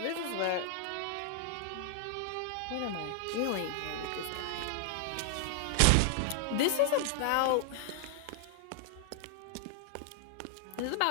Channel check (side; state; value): both; different; correlation 0.00